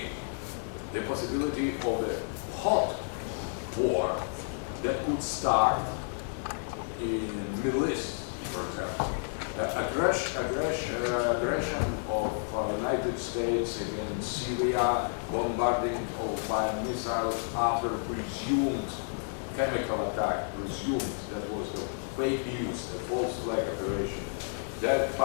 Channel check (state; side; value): silent; right; 57 dB below the other